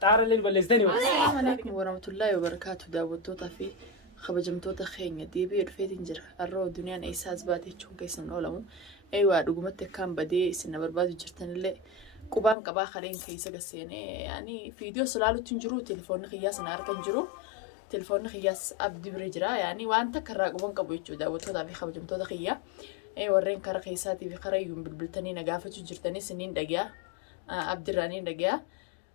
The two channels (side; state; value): right; drops out; at 12.6 s